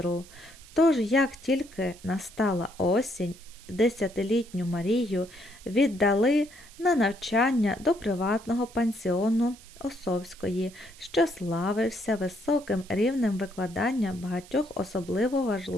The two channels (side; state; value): right; noise; hiss, 22 dB below the sound